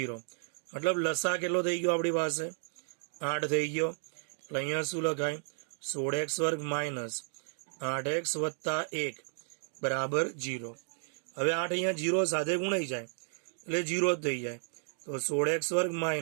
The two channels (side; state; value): left; silent; 56 dB below the other